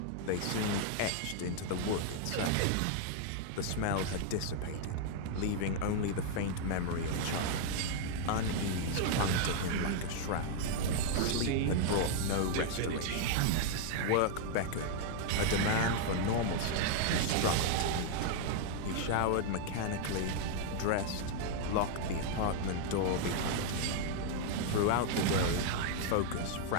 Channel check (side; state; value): both; different; correlation 0.00